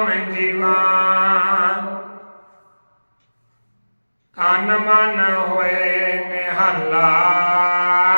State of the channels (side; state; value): both; inverted; correlation -1.00